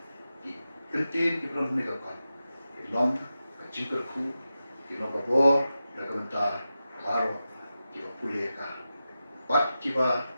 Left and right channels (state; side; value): inverted; both; correlation -0.92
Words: kentin ibron ni kot. Long kecingkerku long kabor nagabenta baro iba pulih ka. Bat kiba